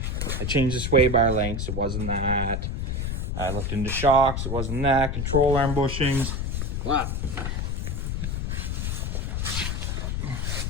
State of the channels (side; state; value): left; noise; rumble, 1 dB below the sound